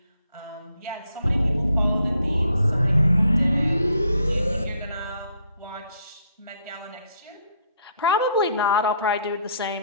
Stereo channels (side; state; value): both; inverted; correlation -0.68